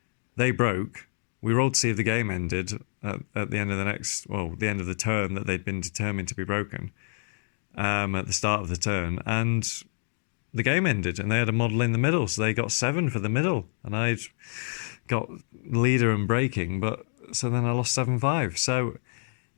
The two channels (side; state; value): right; silent; 60 dB below the other